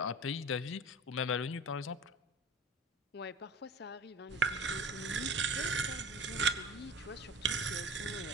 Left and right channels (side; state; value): both; normal; correlation 0.35